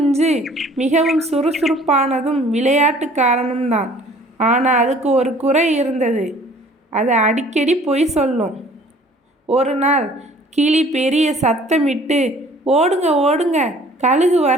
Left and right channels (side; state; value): both; normal; correlation 0.53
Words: மிகவும் சுறுசுறுப்பானதும் விளையாட்டுக்காரனும் தான். ஆனால் அதுக்கு ஒரு குறை இருந்தது. அது அடிக்கடி பொய் சொல்லும். ஒரு நாள் கிளி பெரிய சத்தமிட்டு, ஓடுங்க ஓடுங்க, கழுகு